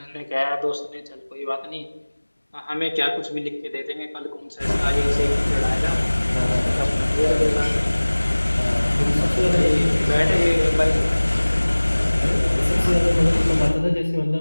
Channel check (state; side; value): inverted; both; correlation -1.00